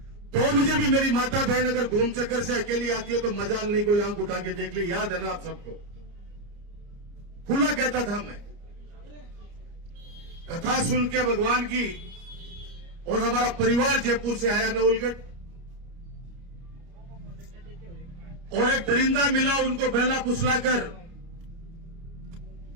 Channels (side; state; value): left; late; 30 ms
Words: 2 बजे भी मेरी माता बहन अगर घूम चक्कर से अकेली आती है तो मजाल नहीं, कोई आंख उठा के देख ली। याद है ना आप सबको? खुला कहता था मैं। कथा सुन के भगवान की, और हमारा परिवार जयपुर से आया नवलगढ़, और एक दरिंदा मिला, उनको बहला फुसलाकर